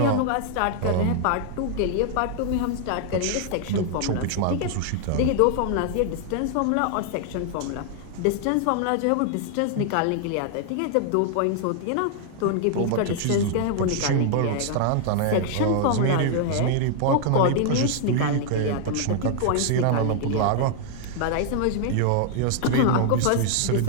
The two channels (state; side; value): different; both; correlation 0.00